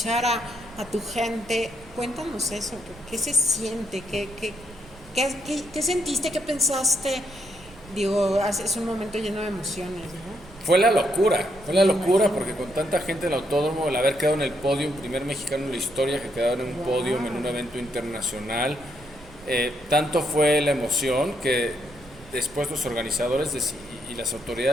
a tu gente, cuéntanos eso, ¿qué se siente? ¿Qué sentiste? ¿Qué pensaste? Digo, es un momento lleno de emociones, ¿no? fue la locura porque con tanta gente en el autódromo, el haber quedado en el podio, primer mexicano en la historia que quedaba en un podio en un evento internacional, tanto fue la emoción que después los organizadores y las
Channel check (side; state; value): right; noise; rumble, 21 dB below the sound